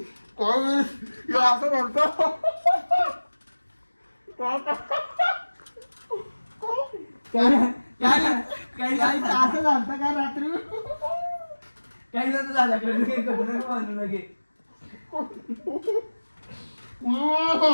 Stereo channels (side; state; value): both; inverted; correlation -1.00